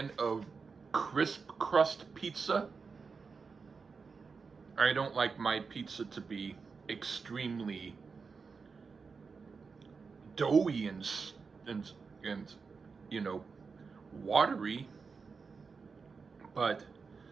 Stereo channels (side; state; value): left; quieter; 5.0 dB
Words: of crisp crust pizza. I don't like my pizza to be extremely doughy and you know, watery, but